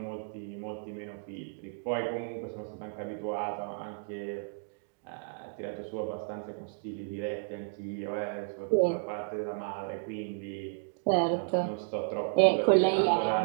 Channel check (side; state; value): left; silent; digital silence